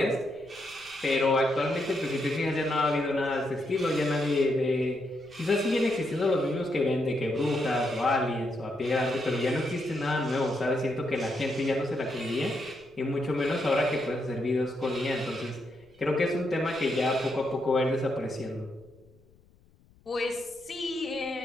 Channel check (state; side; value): noise; left; rumble, 29 dB below the sound